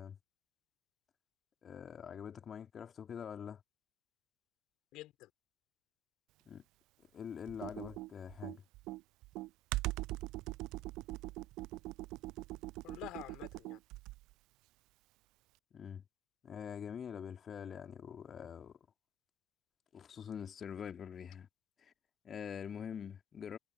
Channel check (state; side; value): normal; both; correlation 0.44